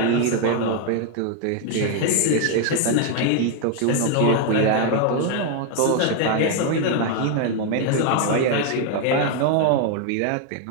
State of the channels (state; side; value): different; both; correlation 0.00